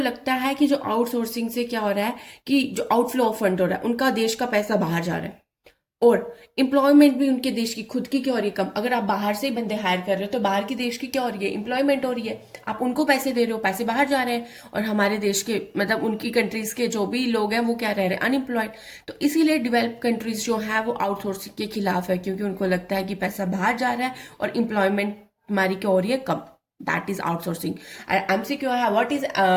है कि जो आउटसोर्सिंग से क्या हो रहा है, कि जो आउटफ्लो ऑफ फंड हो रहा है, उनका देश का पैसा बाहर जा रहा है, और एम्प्लॉयमेंट भी उनके देश की खुद की क्या हो रही है, कम। अगर आप बाहर से ही बंदे हायर कर रहे हो तो बाहर की देश की क्या हो रही है, एम्प्लॉयमेंट हो रही है। आप उनको पैसे दे रहे हो, पैसे बाहर जा रहे हैं, और हमारे देश के मतलब उनकी कंट्रीज के जो भी लोग हैं वो क्या रह रहे हैं, अनएम्प्लॉयड। तो इसीलिए डेवलप कंट्रीज जो है वो आउटसोर्सिंग के खिलाफ है, क्योंकि उनको लगता है कि पैसा बाहर जा रहा है और एम्प्लॉयमेंट हमारी क्या हो रही है, कम। That is outsourcing. MCQ है, what is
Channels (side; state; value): both; identical; correlation 1.00